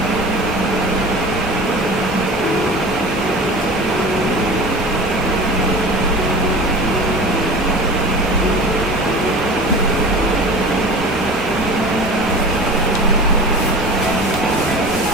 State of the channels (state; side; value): normal; both; correlation 0.36